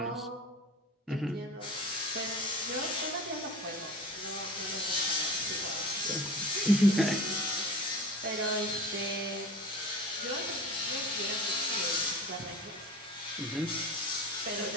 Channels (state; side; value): normal; both; correlation 0.36